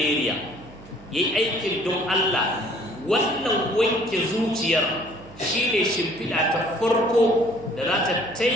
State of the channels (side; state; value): right; noise; hum, 21 dB below the sound